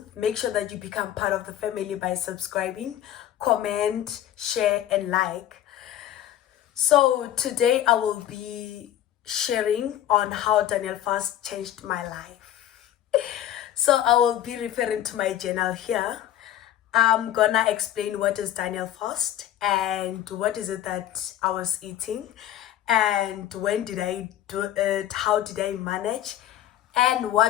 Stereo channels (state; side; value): quieter; right; 11.8 dB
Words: Make sure that you become part of the family by subscribing, comment, share, and like. So today I will be sharing on how Daniel fast changed my life. So I will be referring to my journal here. I'm gonna explain what is Daniel fast and what is it that I was eating and when did I do it, how did I manage, and